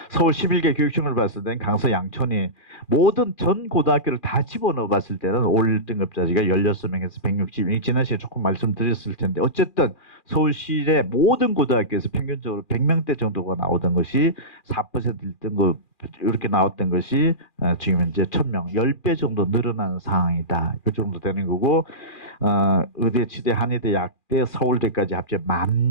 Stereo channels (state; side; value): late; right; 2.4 ms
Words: 서울 11개 교육청을 봤을 때는 강서 양천이 모든 전 고등학교를 다 집어넣어 봤을 때는 올 등급자지가 16명에서 160명. 지난 시간에 조금 말씀드렸을 텐데 어쨌든 서울시의 모든 고등학교에서 평균적으로 100명대 정도가 나오던 것이 4% 1등급 이렇게 나왔던 것이 지금 현재 1000명, 10배 정도 늘어나는 상황이다. 이 정도 되는 거고 의대, 치대, 한의대, 약대, 서울대까지 합쳐